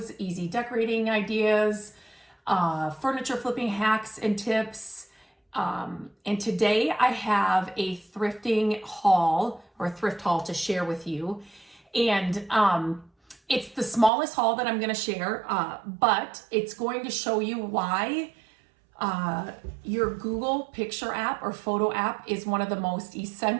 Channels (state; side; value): drops out; left; at 14.1 s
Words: easy decorating ideas, furniture flipping hacks and tips. And today I have a thrifting haul or thrift haul to share with you. And it's the smallest haul that I'm going to share, but it's going to show you why your Google Picture app or photo app is one of the most